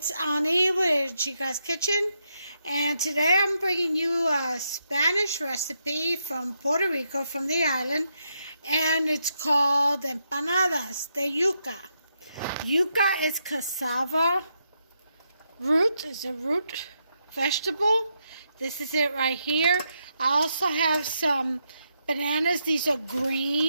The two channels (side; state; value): both; inverted; correlation -0.81